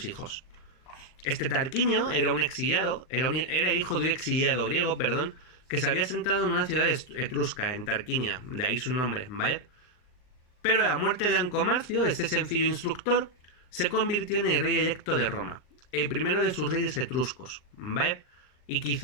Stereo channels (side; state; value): right; late; 39 ms